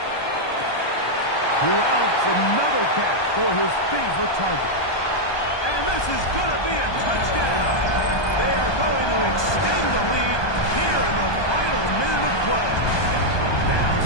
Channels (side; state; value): right; late; 1.2 ms